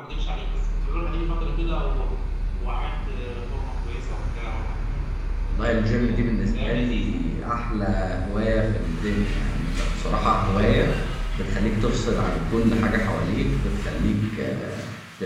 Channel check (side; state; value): both; identical; correlation 1.00